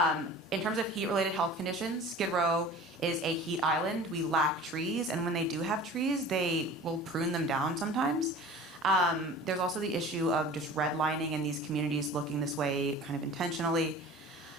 In terms of heat-related health conditions, Skid Row is a heat island. We lack trees, and when they do have trees, they will prune them down sometimes. There's also the issue of just redlining in these communities looking this way kind of intentionally.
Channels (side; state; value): both; normal; correlation 0.41